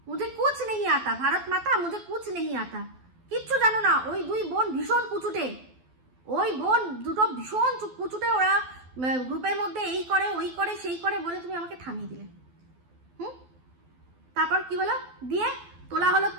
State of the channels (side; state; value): left; late; 12 ms